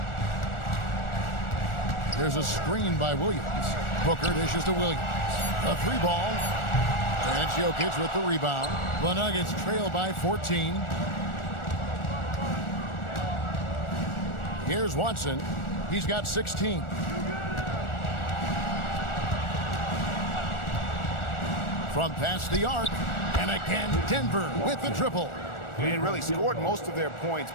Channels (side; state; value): right; late; 1.4 ms